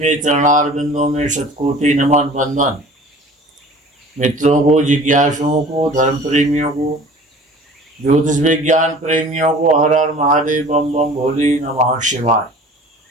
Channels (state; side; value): normal; both; correlation 0.45